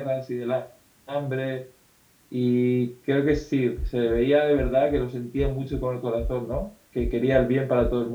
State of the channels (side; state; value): both; identical; correlation 1.00